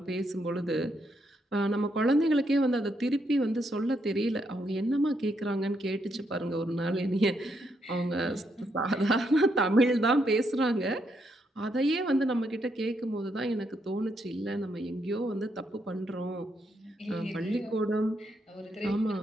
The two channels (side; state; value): both; normal; correlation 0.77